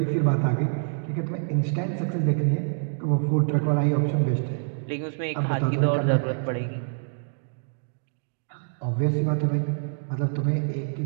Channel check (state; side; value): silent; left; digital silence